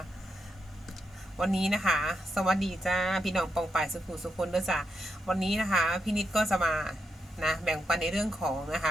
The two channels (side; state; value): both; normal; correlation 0.83